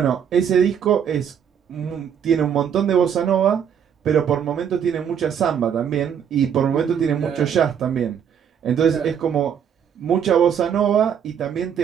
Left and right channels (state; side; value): quieter; left; 8.2 dB